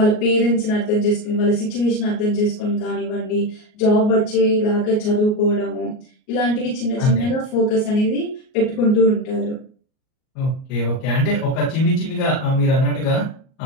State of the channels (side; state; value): right; late; 38 ms